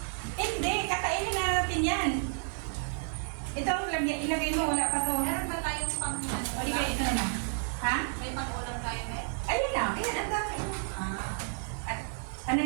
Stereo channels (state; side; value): silent; left; 57 dB below the other